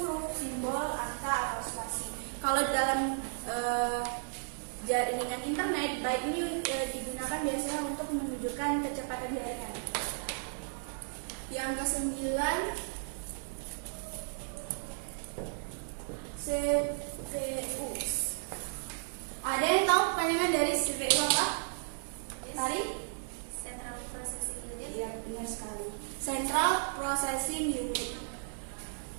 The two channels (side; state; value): left; silent; digital silence